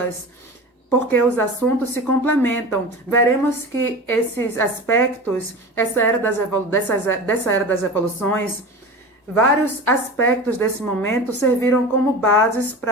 porque os assuntos se complementam. Veremos que esses aspectos, dessa era das revoluções, vários aspectos desse momento serviram como bases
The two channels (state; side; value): normal; both; correlation 0.32